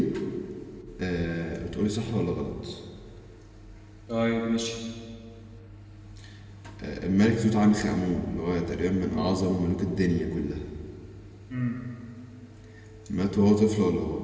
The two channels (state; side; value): identical; both; correlation 1.00